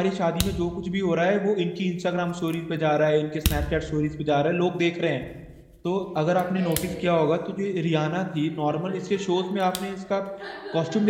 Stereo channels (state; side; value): identical; both; correlation 1.00